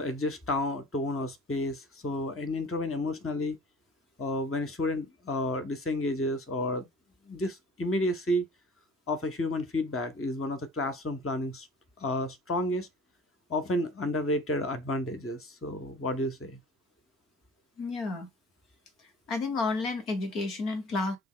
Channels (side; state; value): both; normal; correlation 0.45